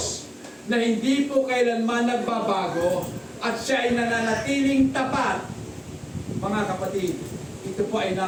na hindi po kailanman nagbabago at siya ay nananatiling tapat. Mga kapatid, ito po ay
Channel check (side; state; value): both; identical; correlation 1.00